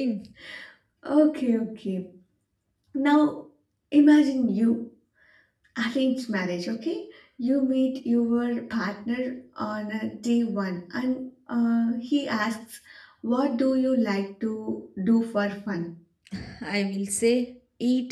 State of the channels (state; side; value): identical; both; correlation 1.00